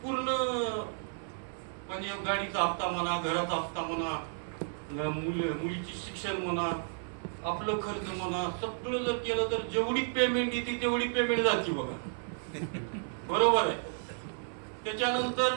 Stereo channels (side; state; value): left; silent; 55 dB below the other